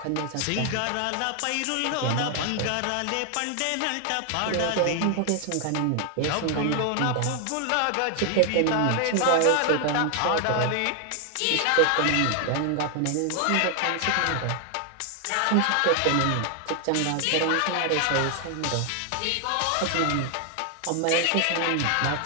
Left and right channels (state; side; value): different; both; correlation 0.00